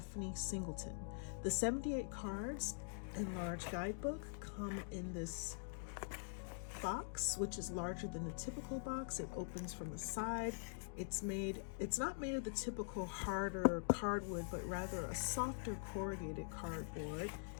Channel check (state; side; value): silent; right; digital silence